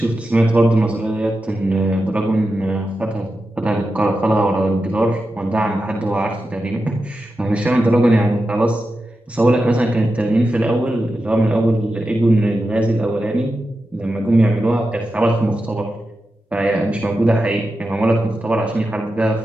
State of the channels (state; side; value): normal; both; correlation 0.90